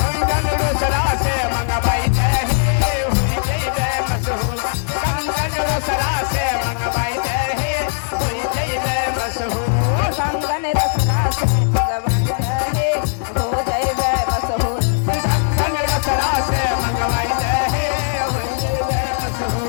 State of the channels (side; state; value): right; silent; digital silence